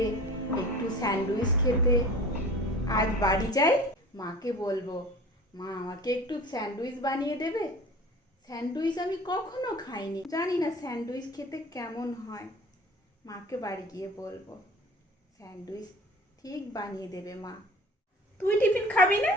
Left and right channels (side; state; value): both; normal; correlation 0.42